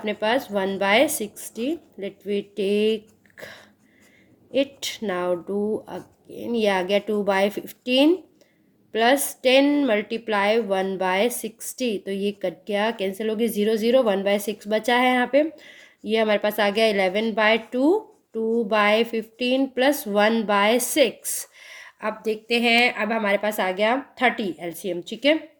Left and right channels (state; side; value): identical; both; correlation 1.00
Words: पास 1/60, let we take it now do again, ये आ गया 2/15 प्लस 10 मल्टीप्लाई 1/60, तो ये कट गया, कैंसिल हो गई, 0 0, 1/6 बचा है यहाँ पे। ये हमारे पास आ गया 11/2, 2/15 प्लस 1/6। अब देखते हैं, अब हमारे पास आ गया 30 एलसीएम, ठीक है।